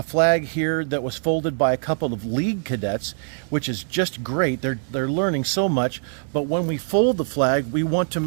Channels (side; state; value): left; silent; digital silence